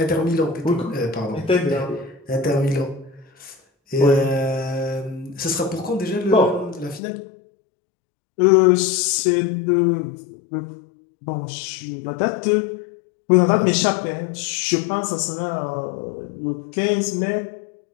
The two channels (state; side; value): drops out; right; at 7.0 s